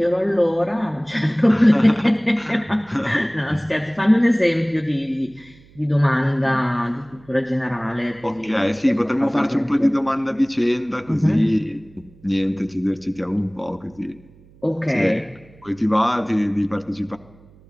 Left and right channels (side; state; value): right; noise; hum, 27 dB below the sound